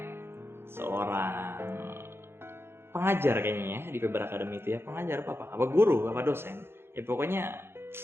seorang pengajar kayaknya ya di Feber Academy itu ya, pengajar apa guru, apa dosen, ya pokoknya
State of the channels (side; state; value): left; late; 0.11 ms